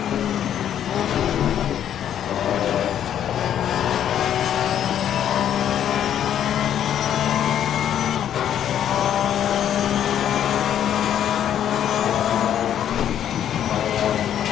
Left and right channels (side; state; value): right; quieter; 10.1 dB